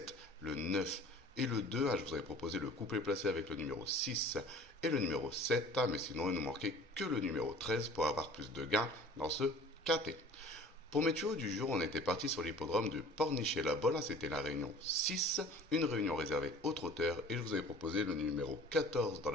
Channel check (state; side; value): normal; both; correlation 0.46